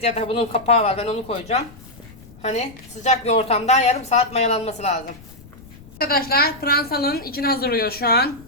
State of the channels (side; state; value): left; noise; rumble, 21 dB below the sound